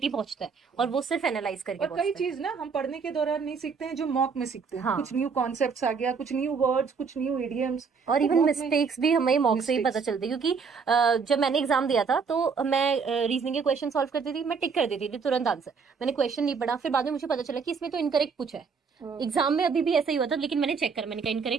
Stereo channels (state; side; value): quieter; left; 5.5 dB